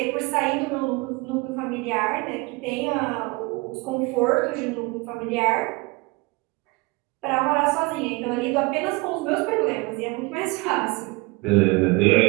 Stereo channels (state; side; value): quieter; left; 26.2 dB